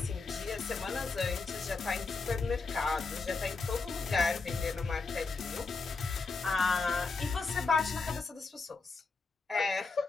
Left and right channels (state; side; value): quieter; right; 4.3 dB